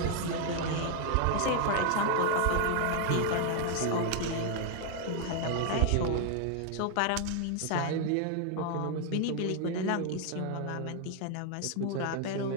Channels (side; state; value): both; different; correlation 0.00